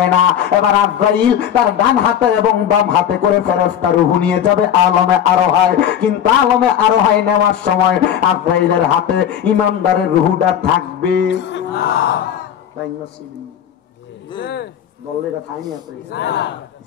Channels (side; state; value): right; quieter; 9.5 dB